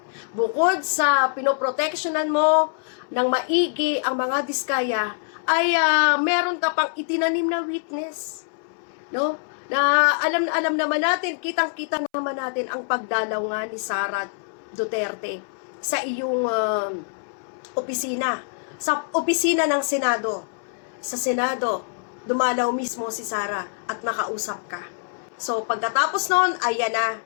Bukod sa pinoprotectionan mo ng maigi ang mga diskaya, ay meron ka pang itinanim na witness. No? Na alam naman natin, kitang-kita naman natin ang pagdalaw nga ni Sara Duterte sa iyong opisina. Sa opisina ng Senado. Sa Senado, dumalaw mismo si Sara at nakausap ka. So, pagkatapos noon, ayan na,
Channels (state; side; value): silent; right; 62 dB below the other